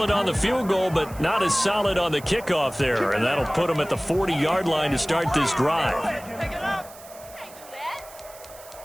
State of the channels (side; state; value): right; noise; hiss, 19 dB below the sound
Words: on the field goal, but not as solid on the kickoff there, and that'll put him at the 40-yard line to start this drive.